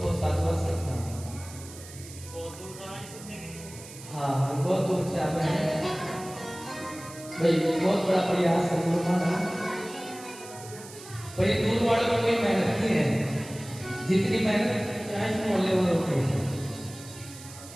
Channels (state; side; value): noise; right; hiss, 16 dB below the sound